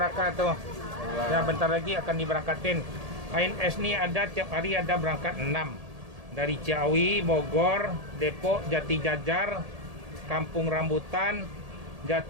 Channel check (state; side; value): late; left; 1.7 ms